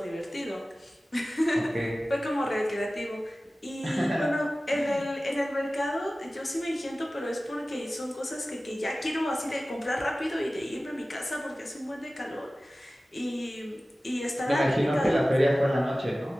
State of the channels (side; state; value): both; normal; correlation 0.96